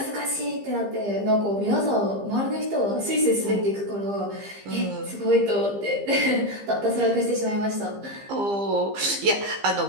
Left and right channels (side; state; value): left; late; 15 ms